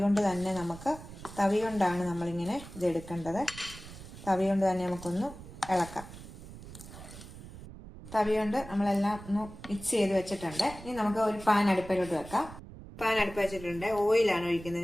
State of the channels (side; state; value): right; noise; rumble, 15 dB below the sound